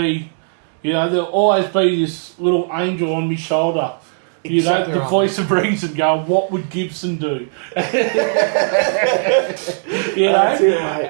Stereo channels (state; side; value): silent; left; digital silence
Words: there'll always be this little angel on my shoulder, exactly the right, voice of reason going, what would Gibson do? That's it,